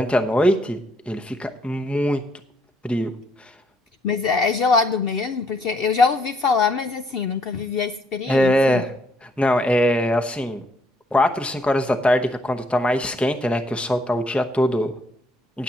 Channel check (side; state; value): both; normal; correlation 0.69